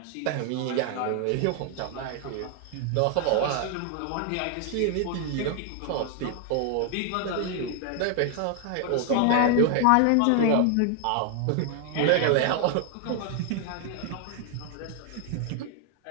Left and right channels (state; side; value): different; both; correlation 0.00